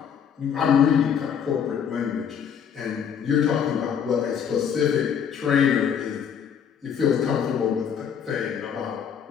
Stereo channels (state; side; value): quieter; right; 7.8 dB